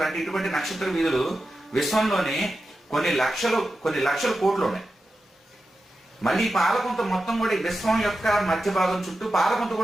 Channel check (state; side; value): normal; both; correlation 0.91